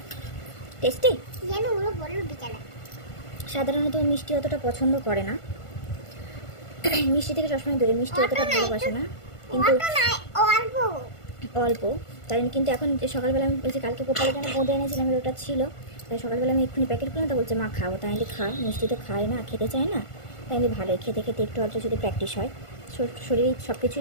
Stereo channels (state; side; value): late; right; 1.5 ms